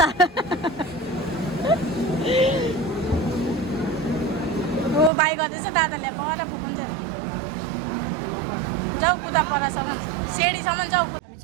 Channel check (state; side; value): drops out; left; at 5.1 s